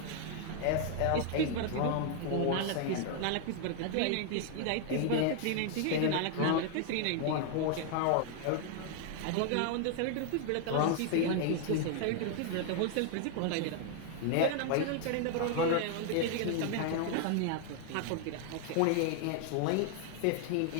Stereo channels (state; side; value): different; both; correlation 0.00